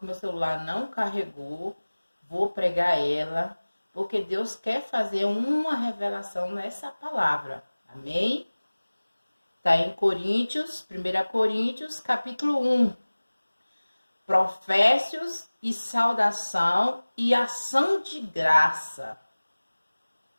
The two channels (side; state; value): both; inverted; correlation -1.00